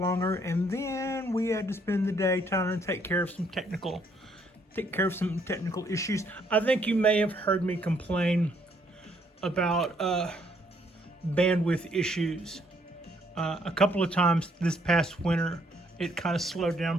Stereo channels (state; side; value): normal; both; correlation 0.68